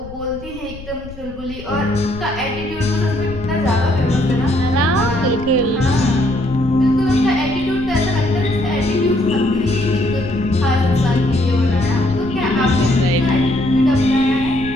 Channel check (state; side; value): noise; left; rumble, 15 dB below the sound